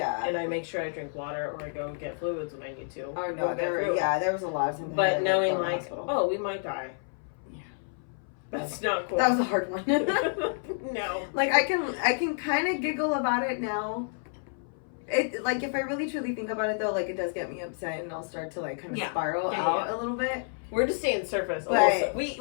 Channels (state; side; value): silent; right; 58 dB below the other